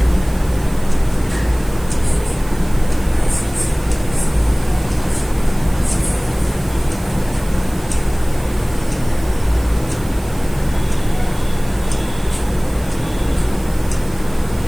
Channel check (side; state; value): right; noise; hiss, 20 dB below the sound